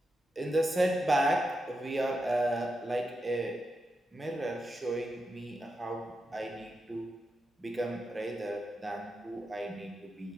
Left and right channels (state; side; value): normal; both; correlation 0.87